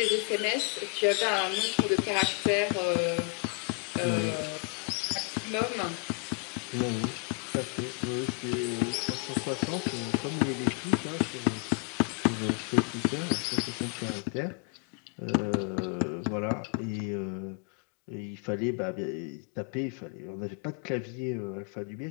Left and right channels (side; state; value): right; quieter; 38.3 dB